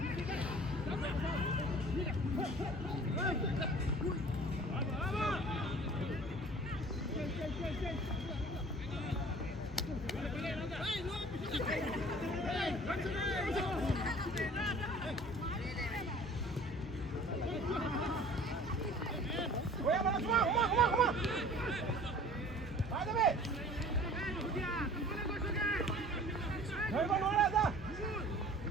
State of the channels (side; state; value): both; normal; correlation 0.47